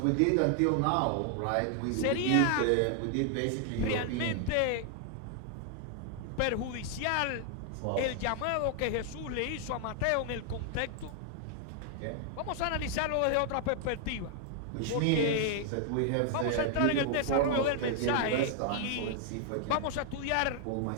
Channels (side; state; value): both; different; correlation 0.00